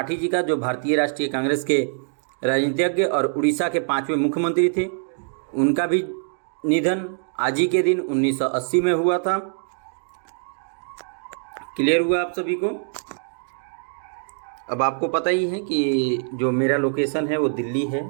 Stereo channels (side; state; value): left; silent; digital silence